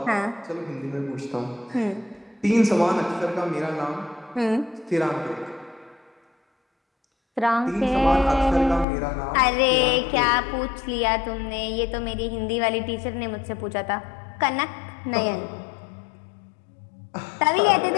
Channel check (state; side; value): drops out; right; at 8.8 s